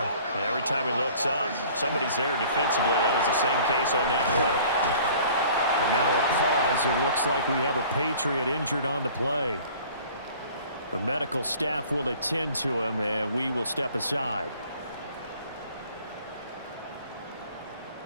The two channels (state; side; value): inverted; both; correlation -0.49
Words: And every time he looks up, somebody's there defensively. That was the same case on that play. And now a pause. It looks like we have a Patriot injured on the play. The medical staff will attend to him, and we will step aside.